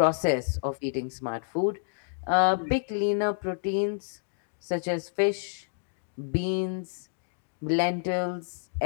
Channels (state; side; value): silent; right; digital silence